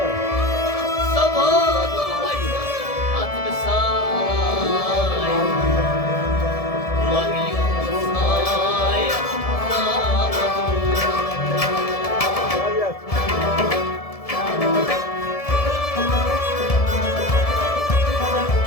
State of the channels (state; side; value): late; right; 1.7 ms